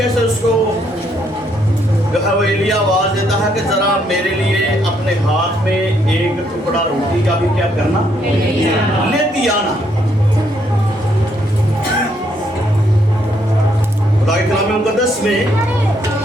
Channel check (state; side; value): normal; both; correlation 0.72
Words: سے اس کو جو ہے وہ ایلیا آواز دیتا ہے کہ ذرا میرے لیے اپنے ہاتھ میں ایک ٹکڑا روٹی کا بھی کیا کرنا، لیتی آنا. خدا کے کلام مقدس میں